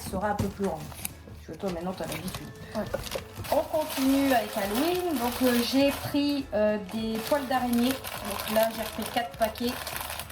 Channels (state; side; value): identical; both; correlation 1.00